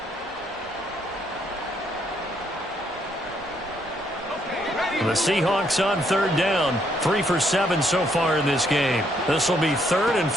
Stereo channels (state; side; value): normal; both; correlation 0.71